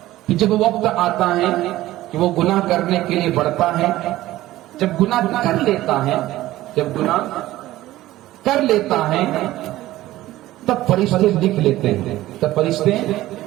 پھر جب وقت آتا ہے کہ وہ گناہ کرنے کے لیے بڑھتا ہے، جب گناہ کر لیتا ہے تب فرشتے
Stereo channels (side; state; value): left; quieter; 15.9 dB